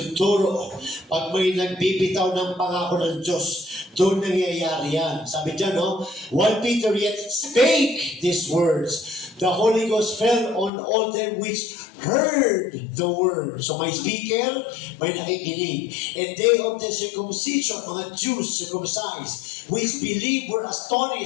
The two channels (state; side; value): drops out; right; at 10.7 s